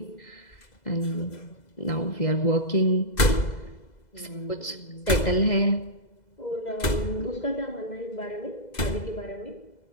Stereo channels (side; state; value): right; late; 2.0 ms